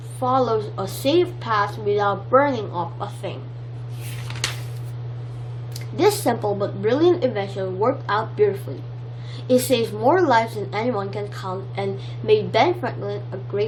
follow a safe path without burning up a thing. This simple but brilliant invention worked out beautifully. It saved more lives than anyone can count and made Ben Franklin a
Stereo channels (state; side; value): identical; both; correlation 1.00